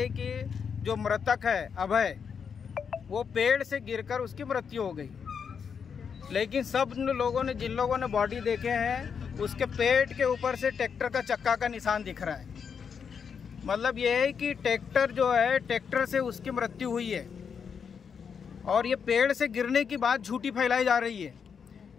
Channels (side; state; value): right; quieter; 6.6 dB